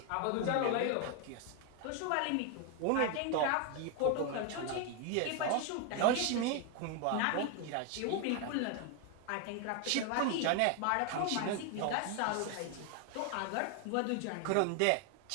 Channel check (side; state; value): both; different; correlation 0.01